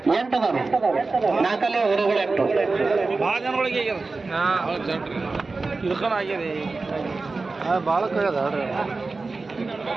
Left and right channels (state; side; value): quieter; left; 3.8 dB